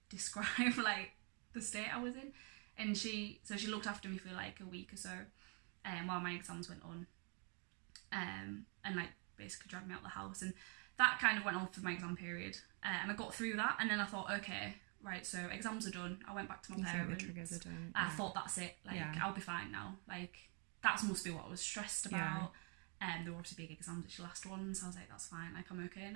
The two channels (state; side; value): quieter; left; 37.0 dB